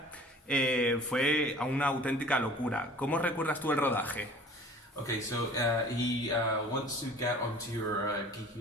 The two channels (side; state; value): both; normal; correlation 0.47